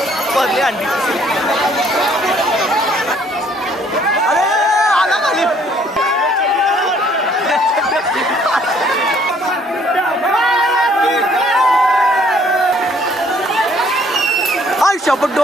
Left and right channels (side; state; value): both; normal; correlation 0.61